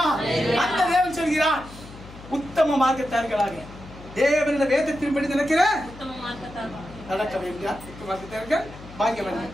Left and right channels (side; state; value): left; noise; hum, 17 dB below the sound